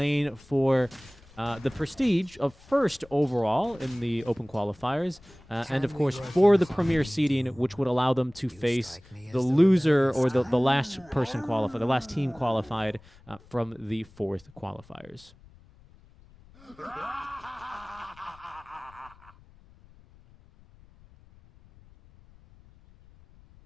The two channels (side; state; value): left; noise; rumble, 25 dB below the sound